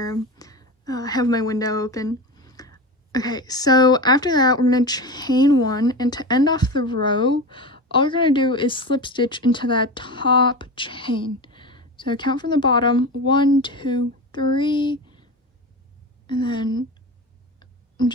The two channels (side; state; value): both; normal; correlation 0.26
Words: them. I have my window open. Okay, so after that, we're gonna chain 1, and to end off the row, all we're gonna do is slip stitch into that top chain. So count from the bottom, 1, 2, 3, and then I'm